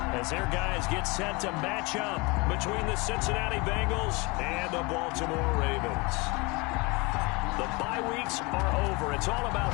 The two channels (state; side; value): quieter; right; 26.8 dB